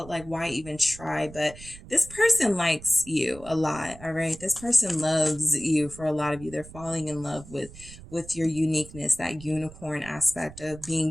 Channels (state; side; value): noise; right; rumble, 17 dB below the sound